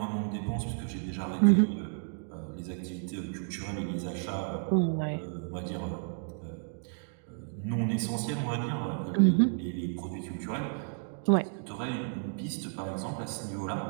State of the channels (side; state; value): left; silent; 56 dB below the other